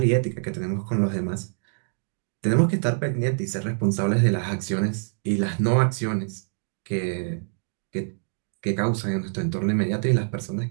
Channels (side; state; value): left; silent; digital silence